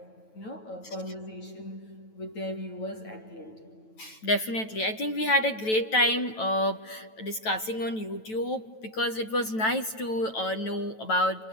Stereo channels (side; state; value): right; late; 9.1 ms